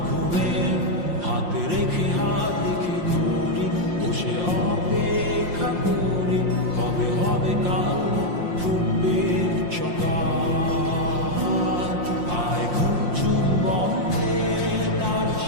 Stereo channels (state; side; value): late; left; 5.7 ms